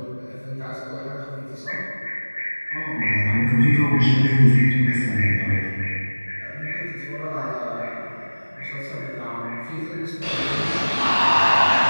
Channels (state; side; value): inverted; both; correlation -1.00